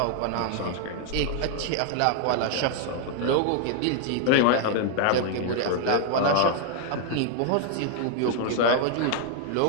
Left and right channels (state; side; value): different; both; correlation 0.00